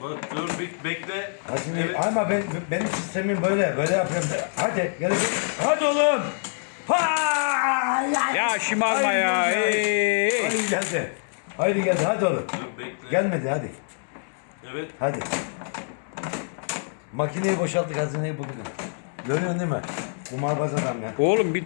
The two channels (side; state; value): right; silent; 62 dB below the other